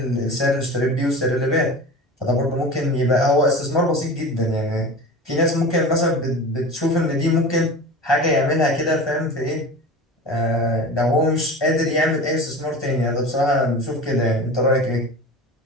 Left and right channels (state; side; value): normal; both; correlation 0.33